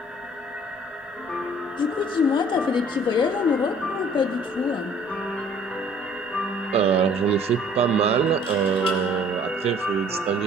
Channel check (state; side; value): normal; both; correlation 0.55